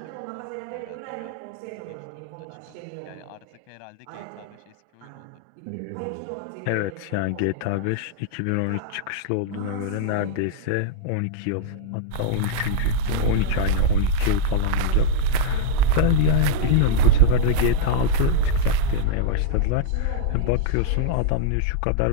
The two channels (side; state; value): both; different; correlation -0.01